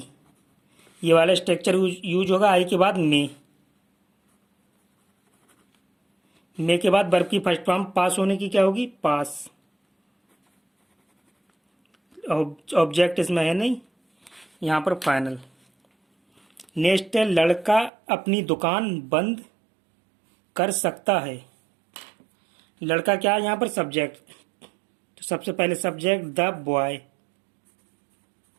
ये वाला स्ट्रक्चर यूज होगा। आई के बाद मे के बाद वर्ब की फर्स्ट फॉर्म पास होने की क्या होगी, पास। ऑब्जेक्ट इसमें है नहीं, यहाँ पर फाइनल। नेक्स्ट है लड़का अपनी दुकान बंद कर सकता है। लड़का क्या है यहाँ पर, सब्जेक्ट। तो सबसे पहले सब्जेक्ट द बॉय,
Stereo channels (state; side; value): drops out; left; at 17.9 s